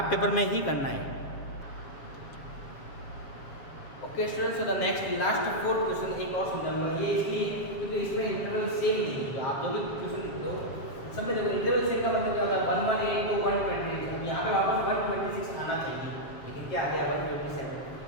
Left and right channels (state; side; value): late; right; 7.3 ms